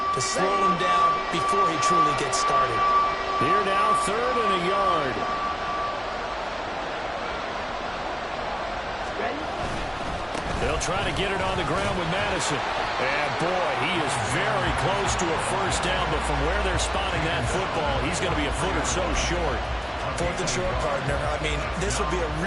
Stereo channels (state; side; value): identical; both; correlation 1.00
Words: to slow him down before he truly gets started? Here now, 3rd and a yard. Ready? They'll try to get it on the ground with Madison. And boy, he is very close to a first down, but from where they're spotting that football, he's going to be a foot or so short. Fourth and short, partner. I mean, this would be a